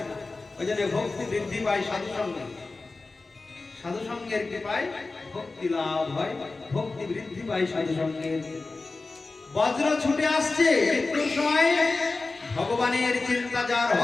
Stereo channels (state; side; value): quieter; right; 3.6 dB